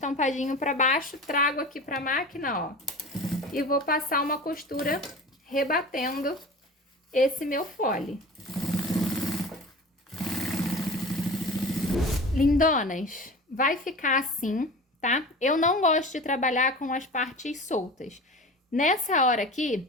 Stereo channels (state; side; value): normal; both; correlation 0.36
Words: pra baixo. Trago aqui pra máquina, ó. E vou passar uma costura rebatendo esse meu fole. Lindonas, vai ficar assim, tá? Eu não gosto de trabalhar com as partes soltas. Nessa hora aqui,